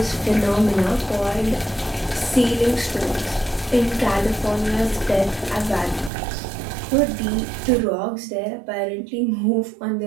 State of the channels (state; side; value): drops out; left; at 6.1 s